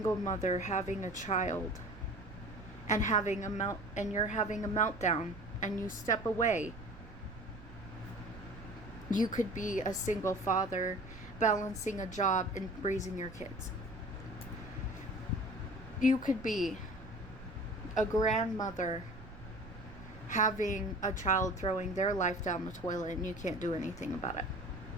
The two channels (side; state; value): right; noise; rumble, 16 dB below the sound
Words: mother having a child and you're having a meltdown and you step away. You could be a single father balancing a job and raising your kids. You could be a grandmother having a child throwing their life down the toilet and you can't do anything about it.